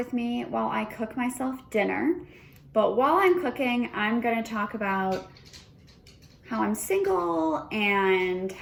me while I cook myself dinner. But while I'm cooking, I'm gonna talk about how I'm single and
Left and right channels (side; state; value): both; identical; correlation 1.00